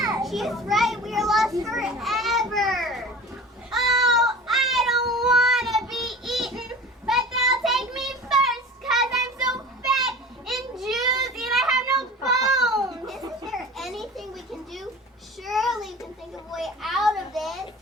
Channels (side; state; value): both; normal; correlation 0.38